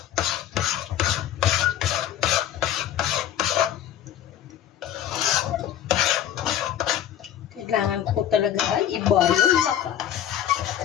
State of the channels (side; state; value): right; quieter; 10.9 dB